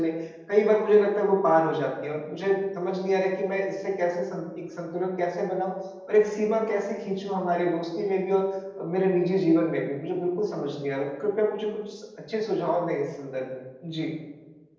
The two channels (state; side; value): identical; both; correlation 1.00